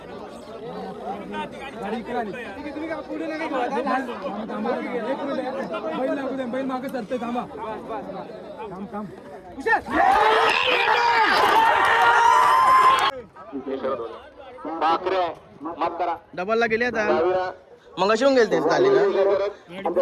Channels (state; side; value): identical; both; correlation 1.00